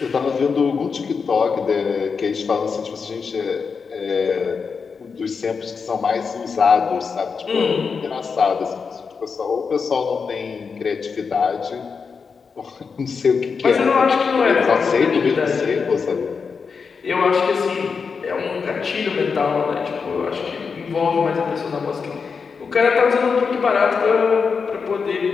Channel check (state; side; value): quieter; right; 5.4 dB